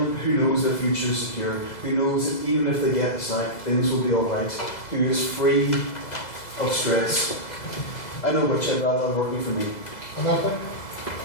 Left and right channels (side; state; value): right; late; 2.0 ms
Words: who knows their future is secure, who knows that even if they get the sack, things will be alright, who is free of stress. I know which I'd rather have working for me.